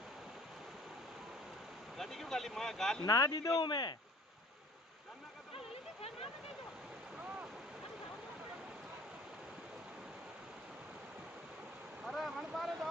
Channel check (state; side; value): normal; both; correlation 0.50